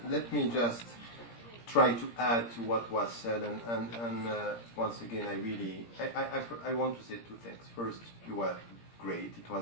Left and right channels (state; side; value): late; right; 17 ms